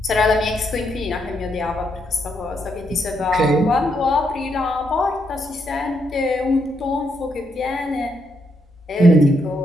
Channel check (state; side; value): normal; both; correlation 0.78